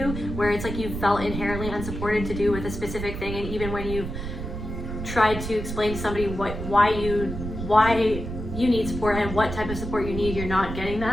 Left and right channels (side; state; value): right; noise; rumble, 6 dB below the sound